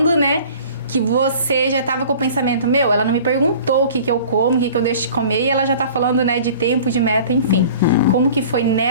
né? Que você já estava com o pensamento, ela não me perguntou o que eu como, o que eu deixo de comer, e ela já tá falando, né, de tempo, de meta, enfim. Como que foi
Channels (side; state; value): both; inverted; correlation -0.45